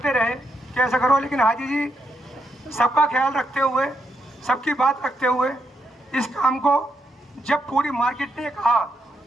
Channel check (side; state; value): both; normal; correlation 0.79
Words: रहे कि ऐसा करो, लेकिन हाजी जी सबका ख्याल रखते हुए, सबकी बात रखते हुए इस काम को, जब पूरी मार्केट ने कहा